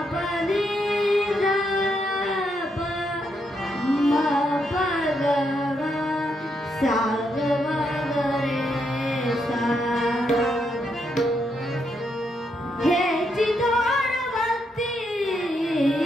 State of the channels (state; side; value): normal; both; correlation 0.79